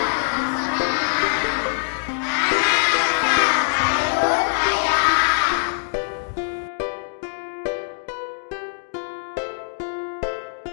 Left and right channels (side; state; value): right; silent; digital silence